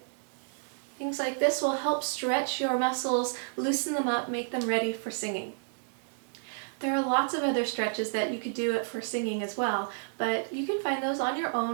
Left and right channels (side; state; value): left; silent; digital silence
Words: Things like this will help stretch your muscles, loosen them up, make them ready for singing. There are lots of other stretches that you could do it for singing as well, but you can find those on your